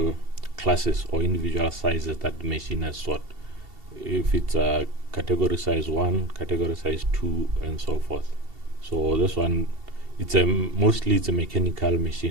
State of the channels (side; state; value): left; late; 2.7 ms